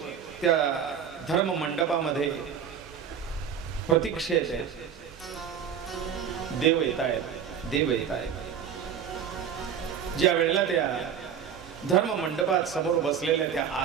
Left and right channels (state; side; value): quieter; left; 8.1 dB